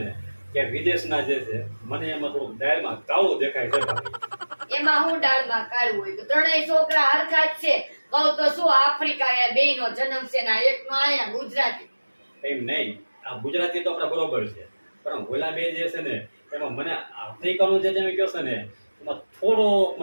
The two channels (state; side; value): inverted; both; correlation -1.00